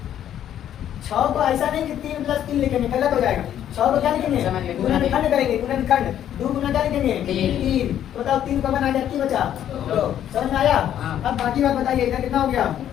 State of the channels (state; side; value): quieter; right; 10.6 dB